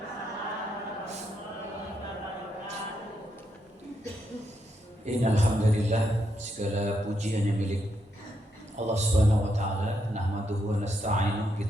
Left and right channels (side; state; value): both; normal; correlation 0.80